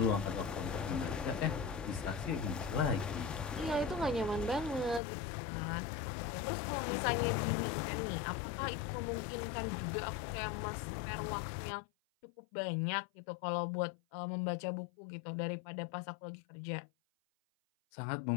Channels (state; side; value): drops out; right; at 5.0 s